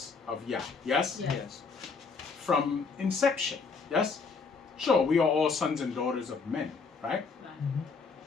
of Yah. Yes? Yes. Yes. From inception. Yes? Sure, we are all sons and daughters of men, right? Right.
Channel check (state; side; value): quieter; right; 4.9 dB